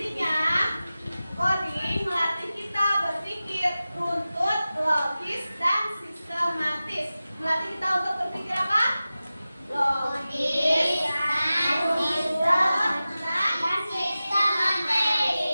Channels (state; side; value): inverted; both; correlation -0.95